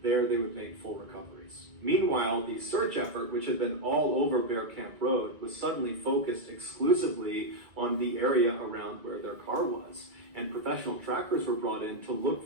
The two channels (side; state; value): left; late; 1.9 ms